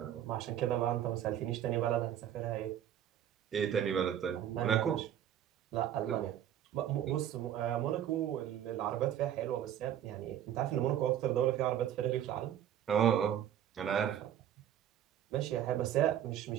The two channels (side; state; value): left; quieter; 10.6 dB